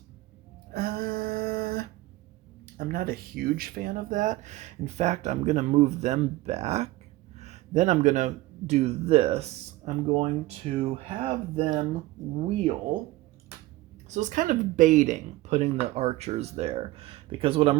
I'm not a huge fan of that. In fact, I'm going to move them back. Then I'm going to do this. I'm going to have them wheel. So it's kind of baiting putting the archers there, because what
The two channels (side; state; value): left; quieter; 18.2 dB